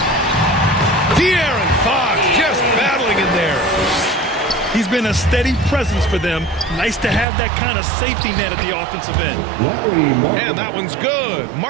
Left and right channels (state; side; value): drops out; left; at 7.2 s